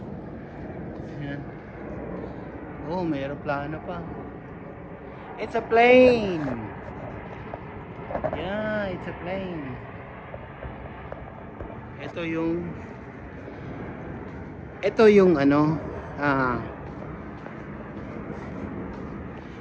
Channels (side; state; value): both; identical; correlation 1.00